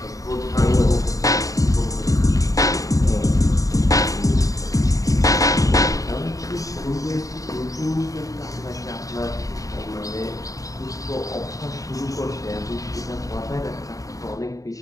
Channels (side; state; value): right; late; 0.16 ms